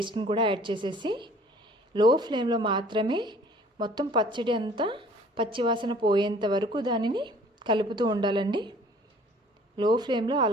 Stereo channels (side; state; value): both; normal; correlation 0.53